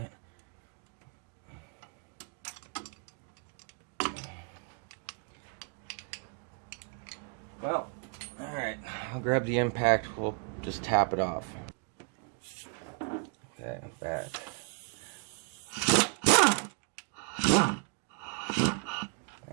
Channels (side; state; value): left; quieter; 37.9 dB